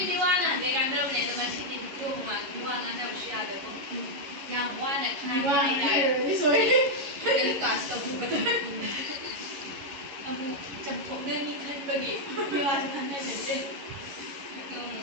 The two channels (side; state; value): left; late; 11 ms